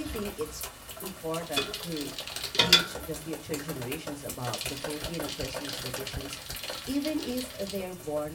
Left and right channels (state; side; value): identical; both; correlation 1.00